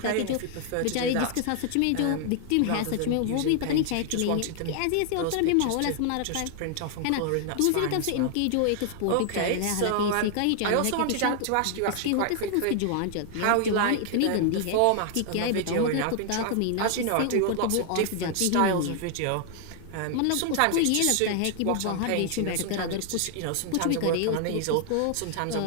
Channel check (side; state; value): both; different; correlation 0.00